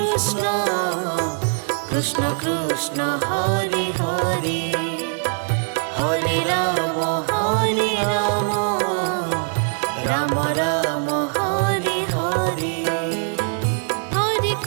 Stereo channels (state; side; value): silent; left; 56 dB below the other